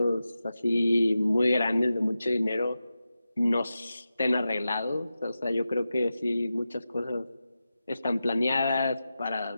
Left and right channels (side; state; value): both; inverted; correlation -0.92